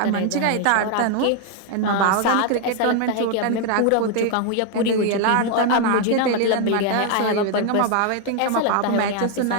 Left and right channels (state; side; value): different; both; correlation 0.00